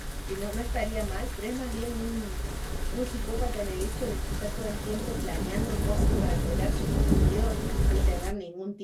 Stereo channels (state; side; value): identical; both; correlation 1.00